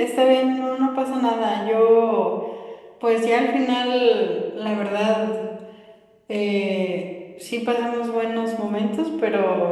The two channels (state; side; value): identical; both; correlation 1.00